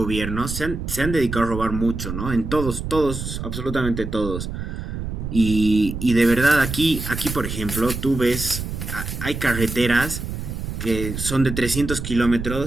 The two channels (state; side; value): noise; right; rumble, 6 dB below the sound